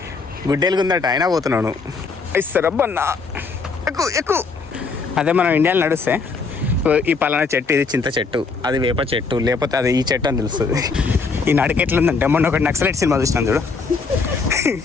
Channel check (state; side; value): quieter; right; 4.5 dB